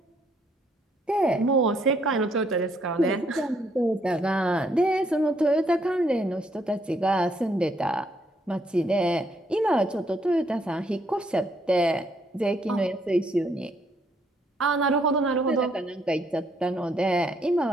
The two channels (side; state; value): both; normal; correlation 0.71